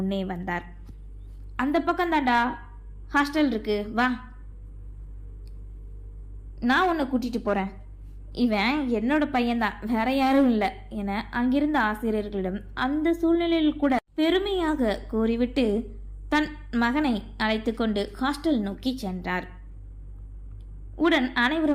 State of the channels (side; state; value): both; identical; correlation 1.00